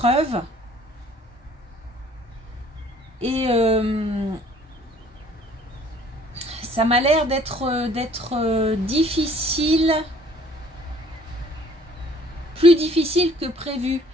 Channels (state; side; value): normal; both; correlation 0.56